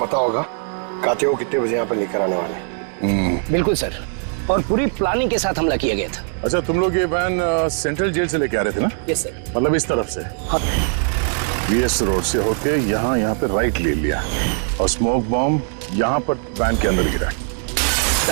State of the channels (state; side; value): silent; left; 56 dB below the other